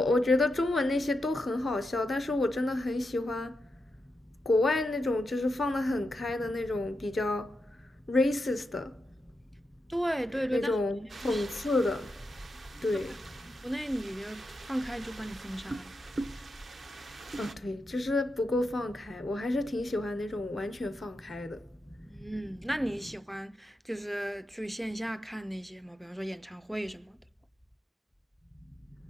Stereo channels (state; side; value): normal; both; correlation 0.87